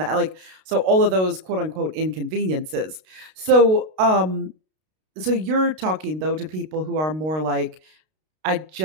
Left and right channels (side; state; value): left; late; 32 ms